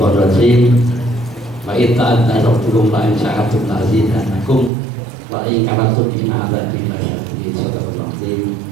rajim. Wa itta'adna rabbukum la in sya'atum la azidannakum wa in kafartum inna 'adzabi lasyadid. Sadaqallahu azim.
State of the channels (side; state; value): left; drops out; at 4.7 s